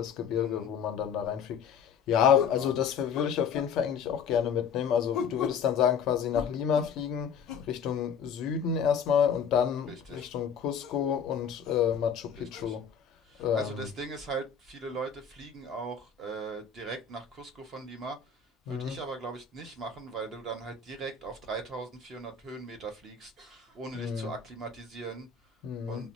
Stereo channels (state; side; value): quieter; right; 6.8 dB